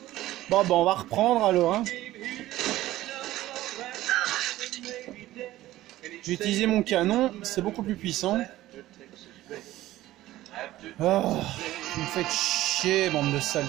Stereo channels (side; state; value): left; quieter; 15.6 dB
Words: Bon, on va reprendre alors, hein. J'ai utilisé mon canon, c'est beaucoup plus puissant. Oh, vous me faites chier, bande de sales.